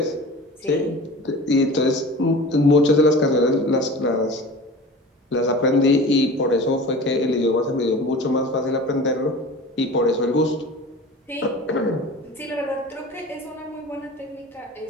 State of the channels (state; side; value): normal; both; correlation 0.37